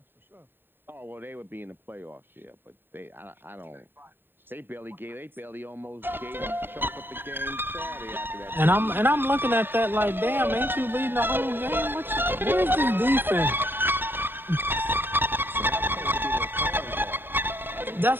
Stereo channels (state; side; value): late; left; 0.097 ms